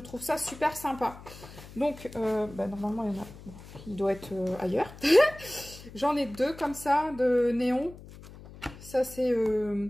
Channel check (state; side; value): noise; left; hum, 17 dB below the sound